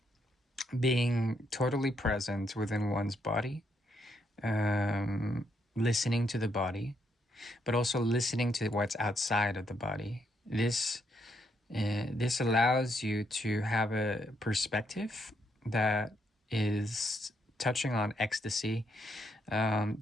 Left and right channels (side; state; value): both; normal; correlation 0.76